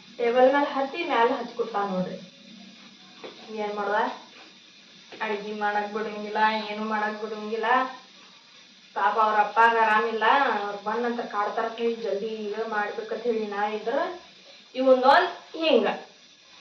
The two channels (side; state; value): both; identical; correlation 1.00